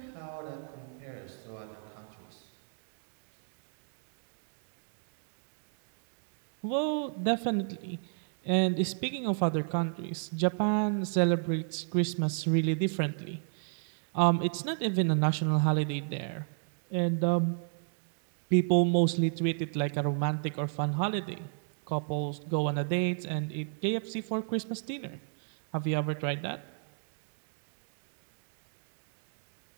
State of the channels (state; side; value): silent; left; digital silence